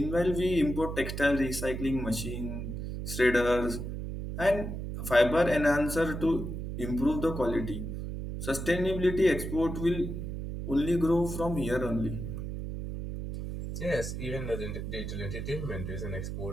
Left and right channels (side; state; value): right; noise; hum, 5 dB below the sound